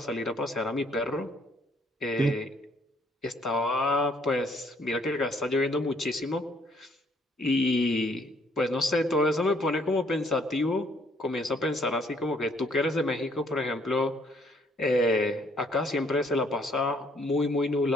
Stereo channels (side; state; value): both; normal; correlation 0.65